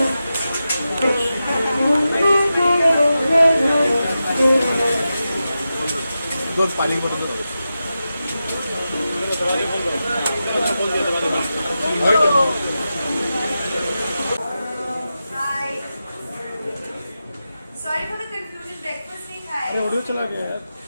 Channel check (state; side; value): inverted; both; correlation -0.91